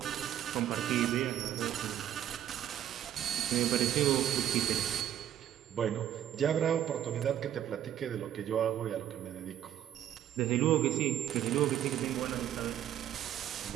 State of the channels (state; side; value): quieter; left; 11.0 dB